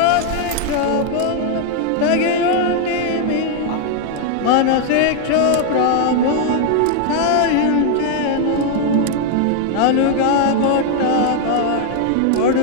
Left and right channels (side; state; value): both; different; correlation 0.00